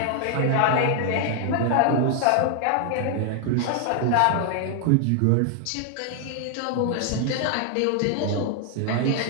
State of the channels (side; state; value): both; different; correlation 0.00